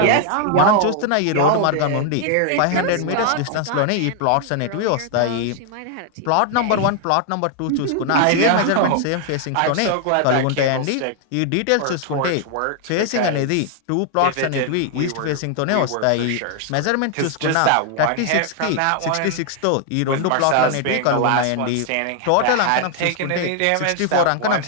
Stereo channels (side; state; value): both; different; correlation 0.00